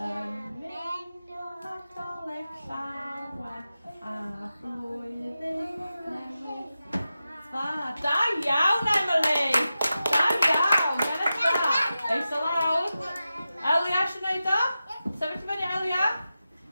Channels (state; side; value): inverted; both; correlation -0.92